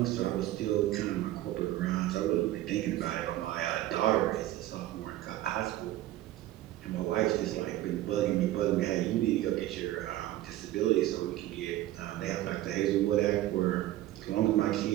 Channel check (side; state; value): left; quieter; 14.9 dB